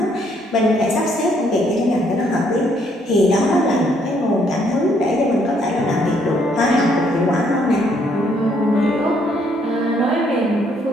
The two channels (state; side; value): normal; both; correlation 0.69